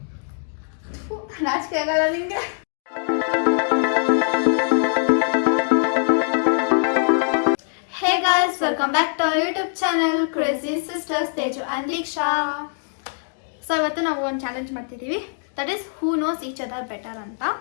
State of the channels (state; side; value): silent; right; digital silence